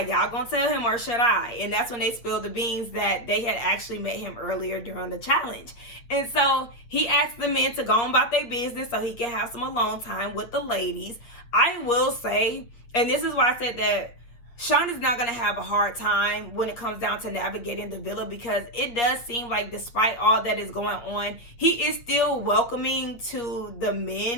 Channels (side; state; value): right; late; 8.7 ms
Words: "Y'all gonna tell him or should I?" And that's when they spilled the beans that they had actually met him earlier during the challenge. And so he asked the men to go on about their business so he can have some alone time with the ladies. I will say, and this is why I said that Sean is not going to have a hard time when it comes down to navigating the villa, because it does seem like despite all that is going on, he is still welcoming to the